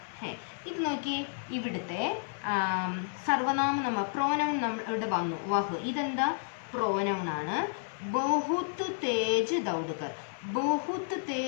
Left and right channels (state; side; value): silent; right; 55 dB below the other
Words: है. ഇത് നോക്കിയേ, ഇവിടുത്തെ സർവനാമം നമ്മൾ പ്രോനൗൺ ഇവിടെ വന്നു. വഹ് ഇതെന്താ പ്രോനൗൺ ആണ്. ബഹുത്ത് തേജ് ദൗഡ്കർ. ബഹുത്ത്